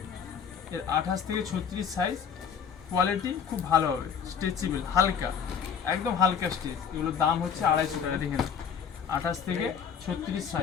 এর 28 থেকে 36 সাইজ। কোয়ালিটি খুব ভালো হবে, স্ট্রেচেবল, হালকা, একদম হালকা স্ট্রেচ। এগুলোর দাম হচ্ছে 250 টাকা। দেখে না, 28 থেকে 36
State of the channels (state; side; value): quieter; right; 7.3 dB